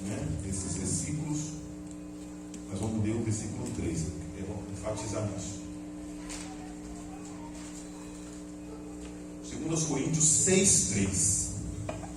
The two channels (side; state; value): both; identical; correlation 1.00